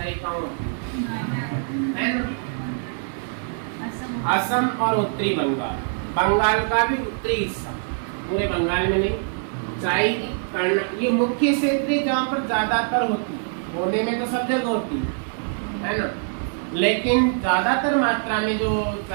कौन है ना? असम और उत्तरी बंगाल, बंगाल का भी उत्तरी हिस्सा, पूरे बंगाल में नहीं। चाय, ये मुख्य क्षेत्र है जहाँ पर ज्यादातर होती है, होने में तो सब जगह होती है ना, लेकिन ज्यादातर मात्रा में जो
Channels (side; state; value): left; silent; 63 dB below the other